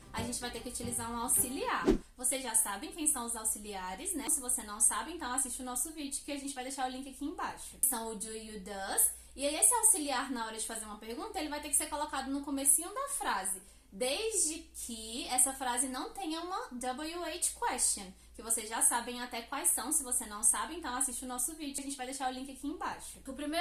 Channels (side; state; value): both; identical; correlation 1.00